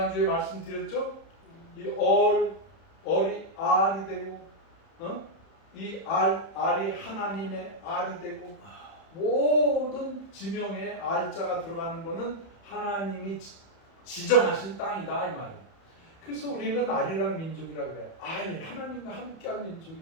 말씀드렸죠? 이 얼이 알이 되고, 이 알이 하나님의 알이 되고, 모든 지명에 알자가 들어가는 것은 하나님이 지정하신 땅이다 이 말이에요. 그래서 우리는 알이란 민족이라고 해요. 하나님과 함께한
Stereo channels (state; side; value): late; right; 31 ms